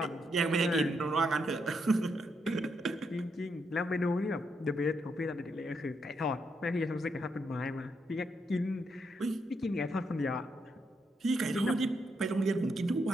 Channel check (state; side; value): normal; both; correlation 0.79